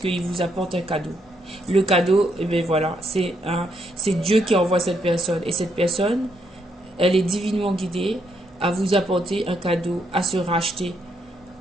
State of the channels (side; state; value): both; normal; correlation 0.76